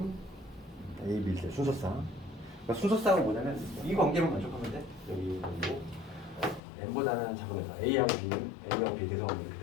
A, B, C 순서상. 그러니까 순서상은 뭐냐면 이 관계만 만족하면 돼. 여기 뭐 n보다는 작으면서 A하고 B는 A하고 B 대성하면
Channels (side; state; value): right; drops out; at 6.6 s